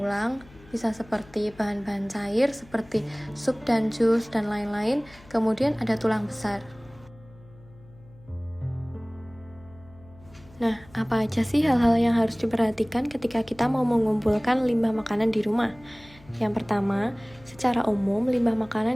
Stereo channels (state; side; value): noise; left; hum, 24 dB below the sound